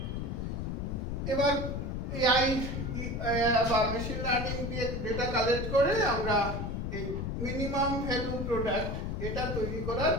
এবার এআই বা মেশিন লার্নিং দিয়ে ডেটা কালেক্ট করে আমরা এই মিনিমাম ভ্যালু প্রোডাক্ট এটা তৈরি করার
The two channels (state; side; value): noise; left; rumble, 3 dB below the sound